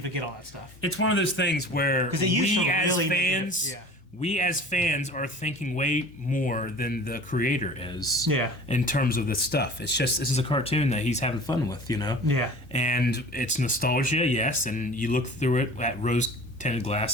forget all that stuff. It's one of those things where we as fans are thinking way more than the creator is. Yeah. In terms of this stuff, it's just this is a cartoon that he's having fun with, you know. Yeah. And it's nostalgia, yes, and you look through it at rose-tinted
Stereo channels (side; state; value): both; normal; correlation 0.42